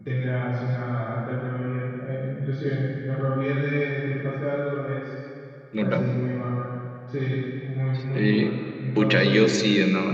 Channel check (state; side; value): identical; both; correlation 1.00